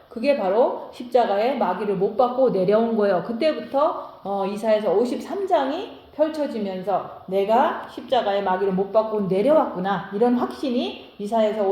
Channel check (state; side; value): identical; both; correlation 1.00